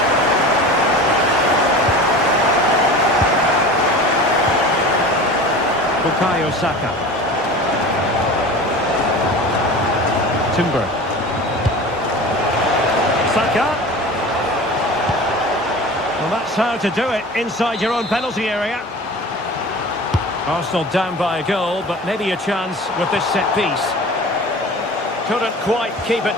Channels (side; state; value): both; normal; correlation 0.36